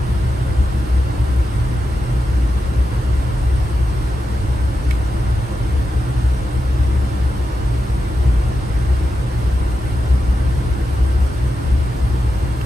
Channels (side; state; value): both; normal; correlation 0.88